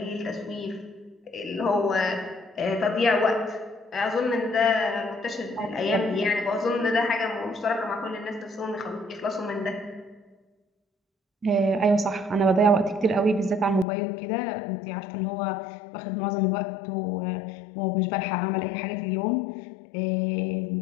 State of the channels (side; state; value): right; drops out; at 13.9 s